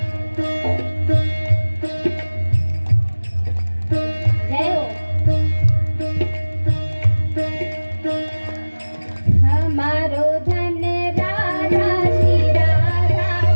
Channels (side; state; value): both; inverted; correlation -1.00